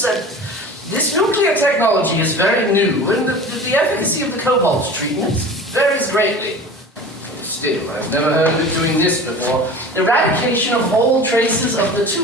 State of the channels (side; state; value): both; normal; correlation 0.37